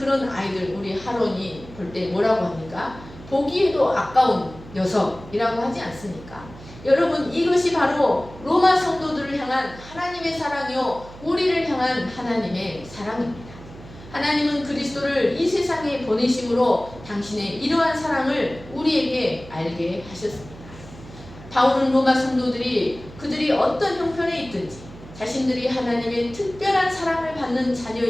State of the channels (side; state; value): right; noise; hum, 17 dB below the sound